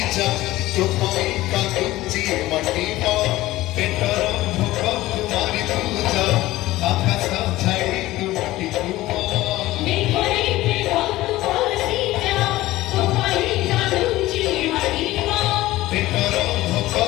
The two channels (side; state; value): right; quieter; 17.1 dB